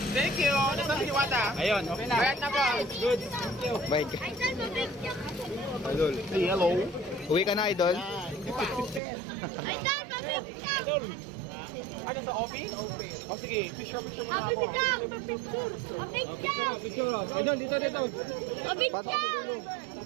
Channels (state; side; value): drops out; left; at 9.0 s